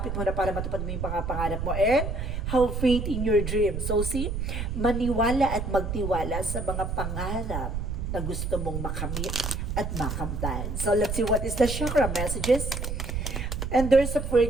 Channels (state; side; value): noise; right; rumble, 3 dB below the sound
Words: mo na para matupad mo yung pangarap mo and have faith in your dream. So see, maniwala at magtiwala sa mga pangarap na gusto mong makamit at makamtan. So let's see what is the chakra messages. And there's a